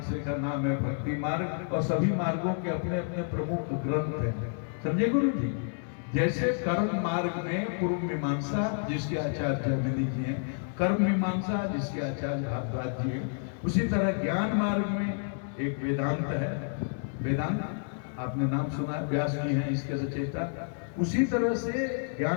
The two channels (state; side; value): silent; right; 58 dB below the other